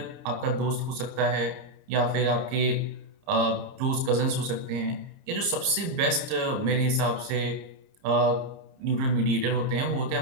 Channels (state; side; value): late; left; 30 ms